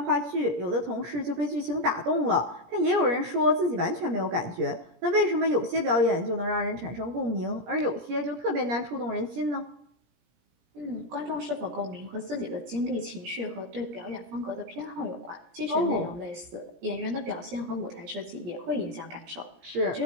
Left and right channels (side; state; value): left; late; 17 ms